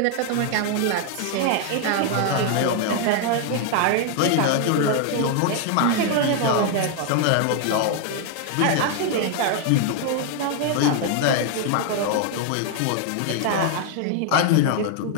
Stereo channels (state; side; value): different; both; correlation 0.00